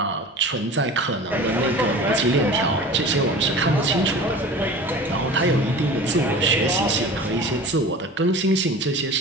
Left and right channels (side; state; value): both; normal; correlation 0.38